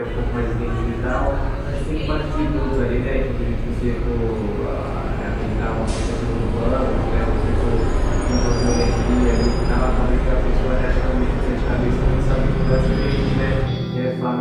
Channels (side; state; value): both; identical; correlation 1.00